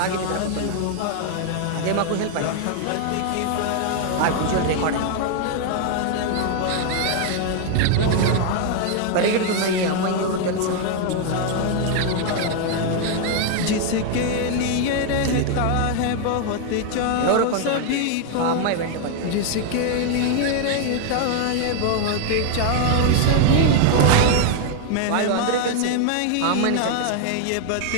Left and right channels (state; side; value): different; both; correlation 0.00